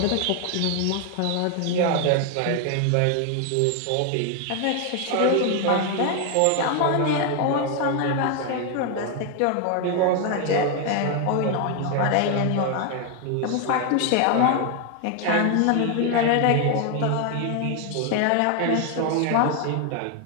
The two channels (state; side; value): different; both; correlation 0.00